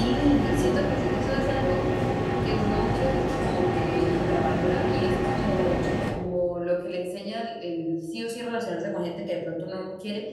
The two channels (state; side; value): identical; both; correlation 1.00